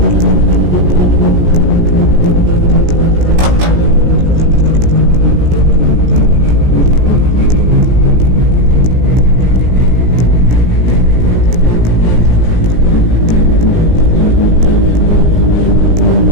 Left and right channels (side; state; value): left; late; 17 ms